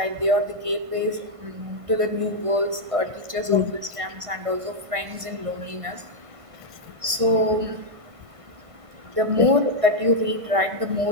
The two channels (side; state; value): left; late; 1.5 ms